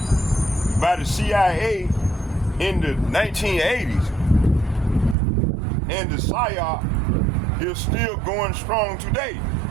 by the CIA in the 1980s. And the PSYOP is still going strong today.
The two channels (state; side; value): drops out; left; at 5.2 s